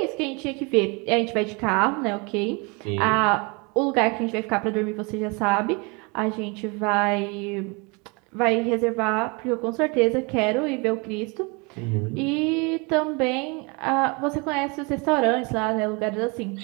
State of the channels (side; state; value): left; quieter; 29.8 dB